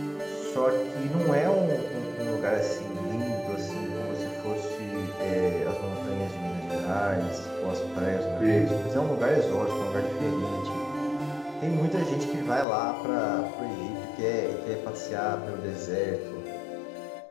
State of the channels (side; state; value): right; drops out; at 12.7 s